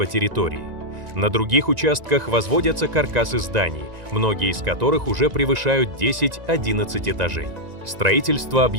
территории. На других участках возводятся каркасы зданий, многие из которых уже превышают 10-11 этажей. Строительство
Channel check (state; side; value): late; left; 1.9 ms